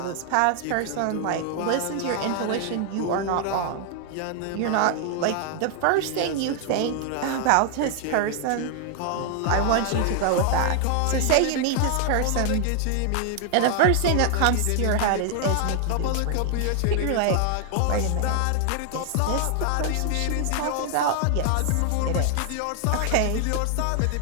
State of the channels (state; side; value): different; both; correlation 0.00